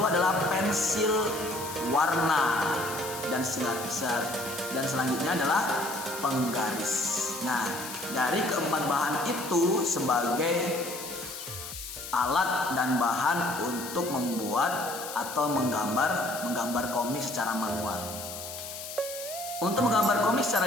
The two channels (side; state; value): left; noise; hiss, 10 dB below the sound